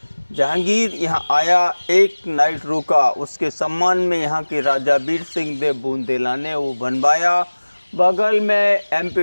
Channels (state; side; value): inverted; both; correlation -1.00